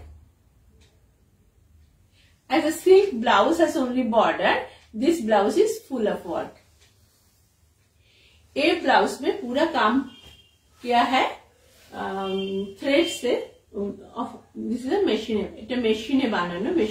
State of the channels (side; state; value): both; identical; correlation 1.00